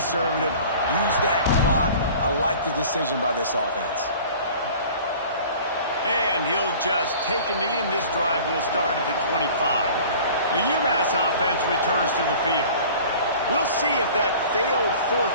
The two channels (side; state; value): both; inverted; correlation -0.45